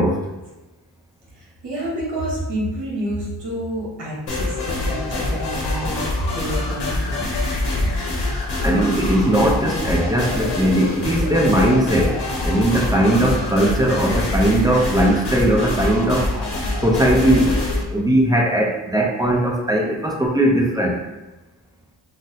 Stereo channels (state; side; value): normal; both; correlation 0.60